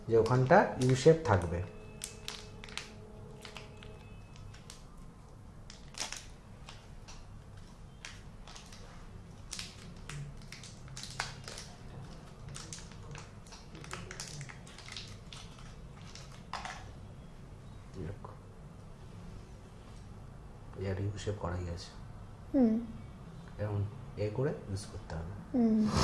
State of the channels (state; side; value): identical; both; correlation 1.00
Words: যে ওখানটা ইউ শেপ থাকবে। হিসেব করাই আছে, এবং এ করে ইউজ করতে হবে।